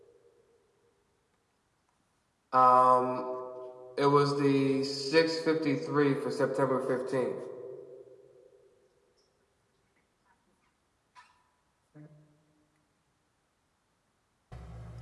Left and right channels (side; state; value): both; identical; correlation 1.00